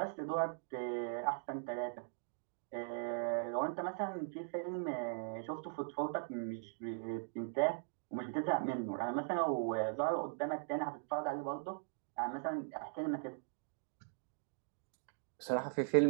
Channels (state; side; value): silent; left; digital silence